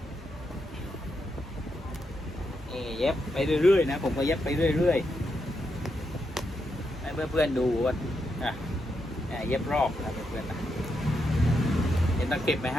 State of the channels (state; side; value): normal; both; correlation 0.83